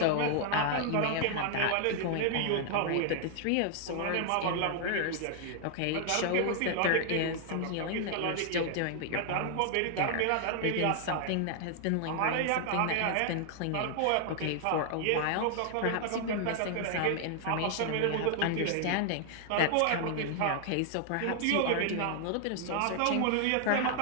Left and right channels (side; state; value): both; different; correlation 0.00